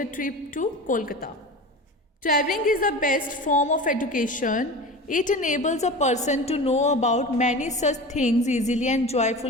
Trip to Kolkata. Traveling is the best form of education. It enables a person to know about many such things easily and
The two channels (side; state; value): both; normal; correlation 0.32